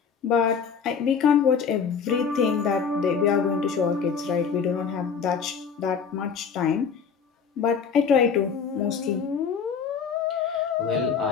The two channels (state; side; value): quieter; right; 6.4 dB